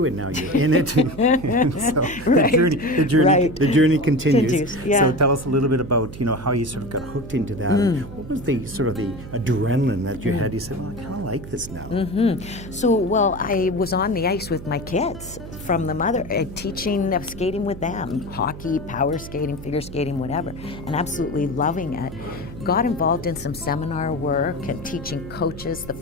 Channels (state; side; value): noise; right; hum, 13 dB below the sound